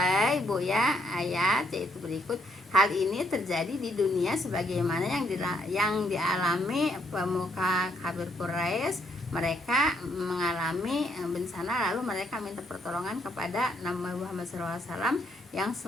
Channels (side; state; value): both; normal; correlation 0.72